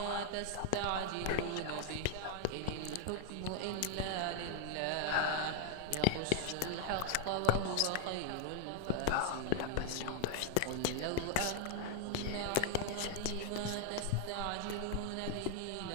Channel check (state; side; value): different; both; correlation 0.00